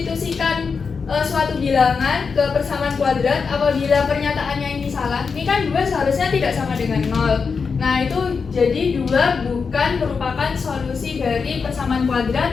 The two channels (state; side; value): quieter; right; 5.3 dB